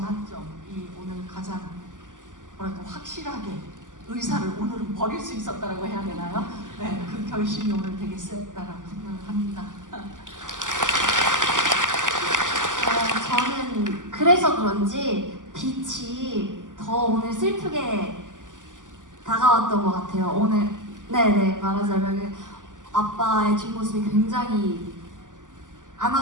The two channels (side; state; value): left; late; 0.87 ms